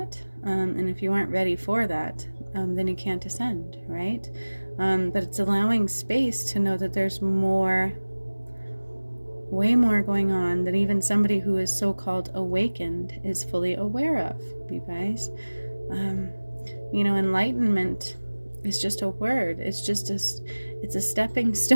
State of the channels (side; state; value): both; inverted; correlation -1.00